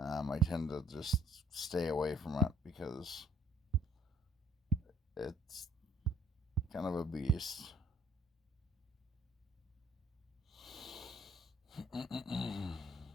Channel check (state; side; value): normal; both; correlation 0.62